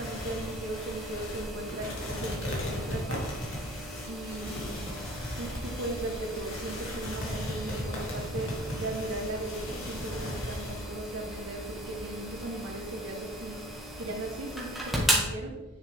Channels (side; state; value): both; normal; correlation 0.49